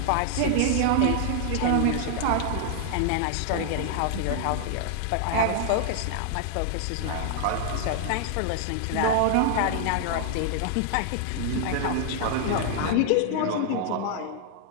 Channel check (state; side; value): different; both; correlation 0.00